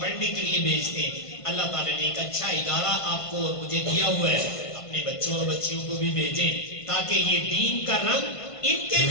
پڑھنے کے لیے بھیجتے ہیں، اللہ تعالیٰ نے ایک اچھا ادارہ آپ کو اور مجھے دیا ہوا ہے، اپنے بچوں اور بچیوں کو بھی بھیجیں تاکہ یہ دین کا رنگ ان کے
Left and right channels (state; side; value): late; right; 1.5 ms